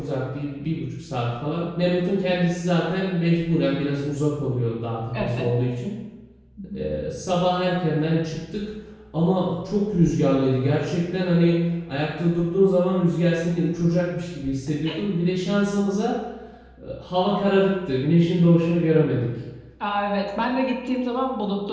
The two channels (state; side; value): identical; both; correlation 1.00